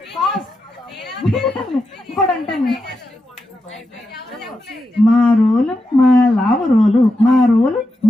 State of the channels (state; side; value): normal; both; correlation 0.87